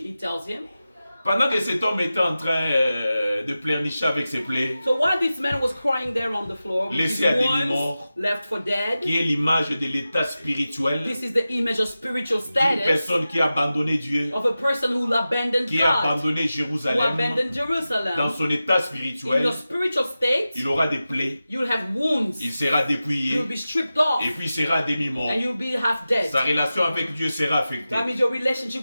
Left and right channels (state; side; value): inverted; both; correlation -0.94